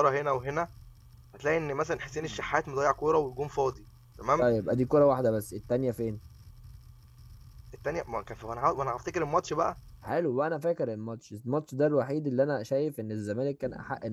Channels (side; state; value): both; identical; correlation 1.00